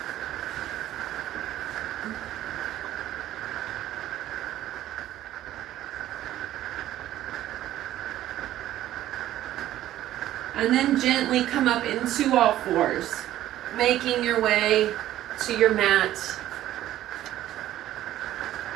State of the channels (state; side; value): quieter; left; 13.4 dB